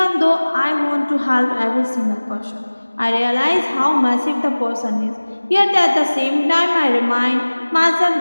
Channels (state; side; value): inverted; both; correlation -1.00